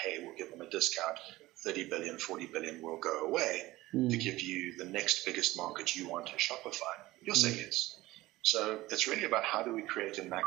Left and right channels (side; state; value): left; quieter; 18.0 dB